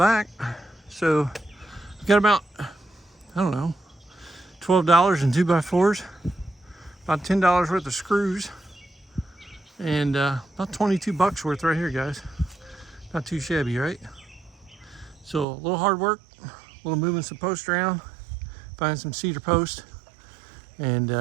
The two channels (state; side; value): drops out; left; at 15.5 s